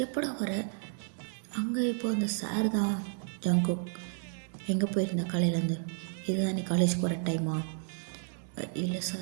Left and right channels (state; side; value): silent; left; 56 dB below the other